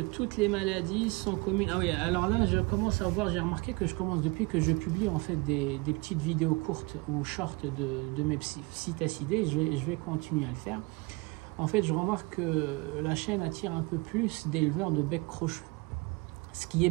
les maladies sont communes? Ah oui, alors là je commence à voir, j'ai remarqué que je commence depuis que je publie en fait des petites vidéos courtes ou short de mes psittacidés, je vais continuer à le faire. En fait je remarque que la chaîne attire un peu plus d'éleveurs de bec crochu. Ce qui est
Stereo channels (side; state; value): left; quieter; 25.9 dB